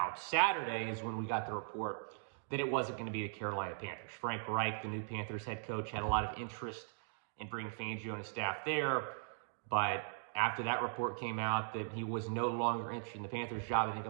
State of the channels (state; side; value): silent; left; digital silence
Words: Saturday is when we got the report that it wasn't going to be the Carolina Panthers. Frank Reich, the new Panthers head coach, had a lot of interest in bringing Fangio and his staff there. But after that report came out that he was no longer interested in the Panthers job, I think a